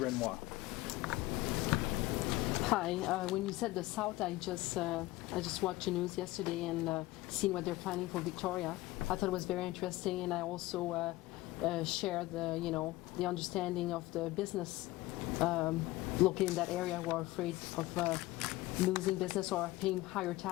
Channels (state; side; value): quieter; right; 18.6 dB